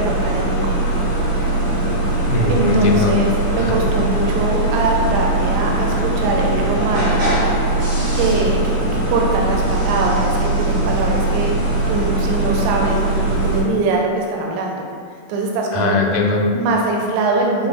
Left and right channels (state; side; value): late; left; 16 ms